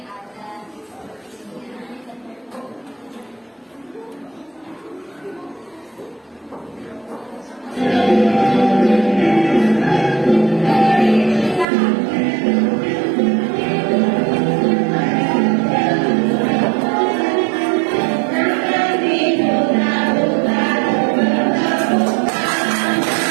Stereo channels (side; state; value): left; drops out; at 11.7 s